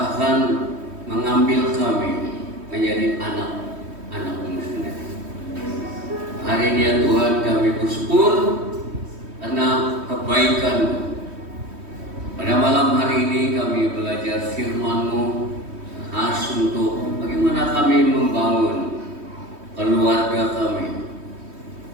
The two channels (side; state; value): left; late; 3.2 ms